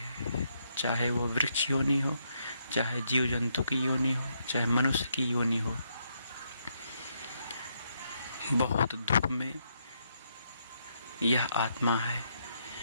चाहे वो वृक्ष योनि हो, चाहे जीव जंतु की योनि हो, चाहे मनुष्य की योनि हो। बहुत दुख में यह आत्मा है,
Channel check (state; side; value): inverted; both; correlation -0.77